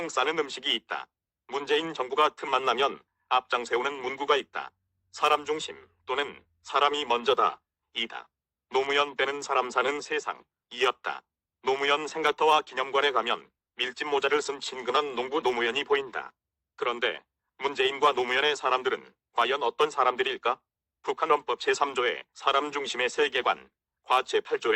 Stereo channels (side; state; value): both; identical; correlation 1.00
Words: 싸는 음식이 있다. 문재인 정부가 틈만 나면 앞장 세우는 문구가 있다. 사람 중심 또는 사람이 먼저다. 이다. 노무현 빼는 사람 사는 세상. 이었다. 노무현 생각터와 기념관에 가면 밀짚 모자를 쓴 친근한 농부 노무현이 보인다. 그런데 문재인과 노무현의 사람들은 과연 어떤 사람들일까? 북한 헌법 제3조의 사람 중심의 세계관, 과